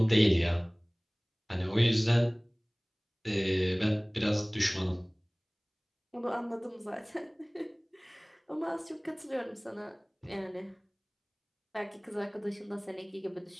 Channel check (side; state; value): both; identical; correlation 1.00